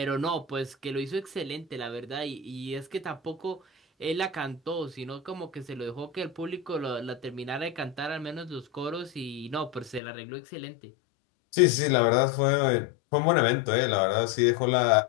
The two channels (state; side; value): drops out; right; at 10.0 s